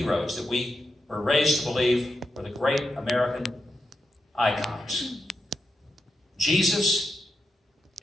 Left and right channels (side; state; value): both; normal; correlation 0.86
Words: that we were raised to believe were the great American icons. Jesus,